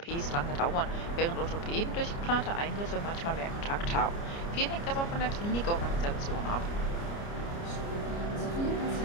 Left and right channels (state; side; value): late; right; 29 ms